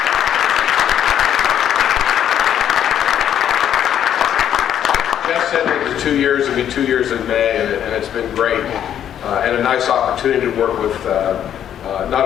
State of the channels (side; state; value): right; quieter; 9.9 dB